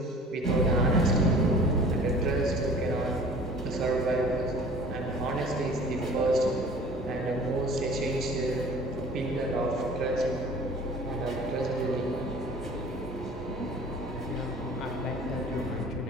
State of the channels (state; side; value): normal; both; correlation 0.47